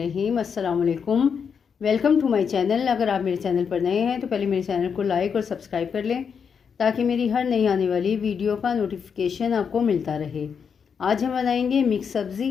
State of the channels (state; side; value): quieter; right; 6.6 dB